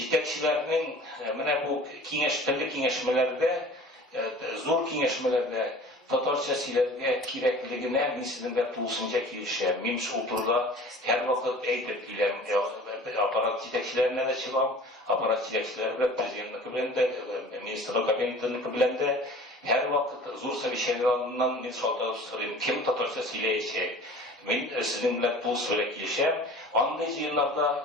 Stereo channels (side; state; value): both; normal; correlation 0.44